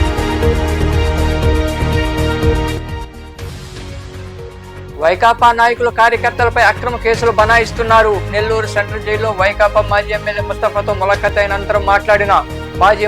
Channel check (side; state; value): both; identical; correlation 1.00